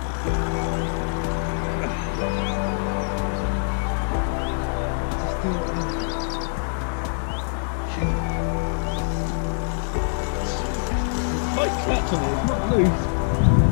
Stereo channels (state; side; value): silent; right; digital silence